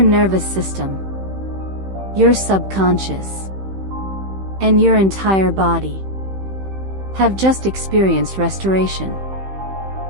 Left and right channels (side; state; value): left; late; 15 ms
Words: system, your subconscious, and your entire body have just experienced restoration.